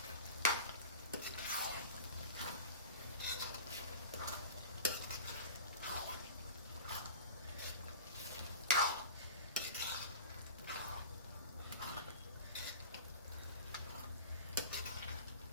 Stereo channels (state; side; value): inverted; both; correlation -0.32